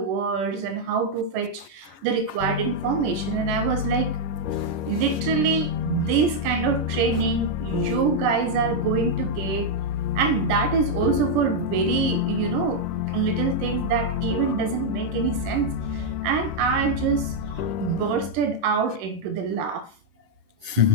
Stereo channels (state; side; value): late; left; 11 ms